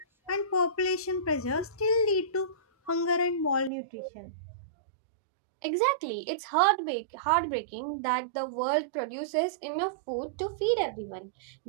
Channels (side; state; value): left; drops out; at 3.7 s